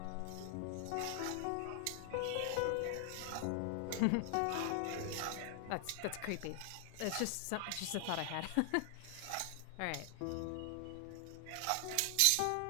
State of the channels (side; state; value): both; different; correlation 0.00